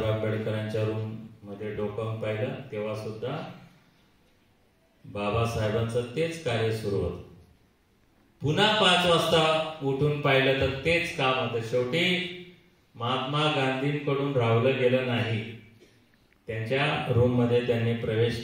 आंबेडकरांच्या रूम मध्ये डोकावून पाहिलं, तेव्हा सुद्धा बाबासाहेबांचं तेच कार्य सुरू होतं. पुन्हा 5 वाजता उठून पाहिलं तर तेच काम होतं. शेवटी महात्मा गांधींकडून राहवलं गेलं नाही. त्यांच्या रूम मध्ये त्यांनी प्रवेश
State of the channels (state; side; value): identical; both; correlation 1.00